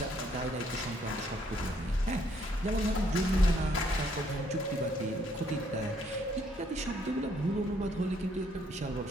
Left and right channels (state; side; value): normal; both; correlation 0.68